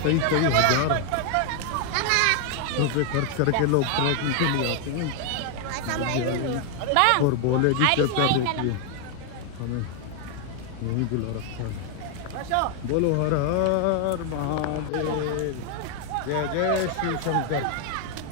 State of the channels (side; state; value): both; different; correlation 0.00